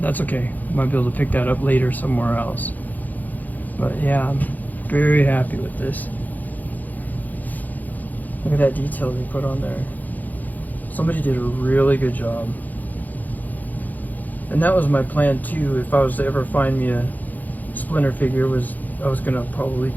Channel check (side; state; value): right; late; 0.082 ms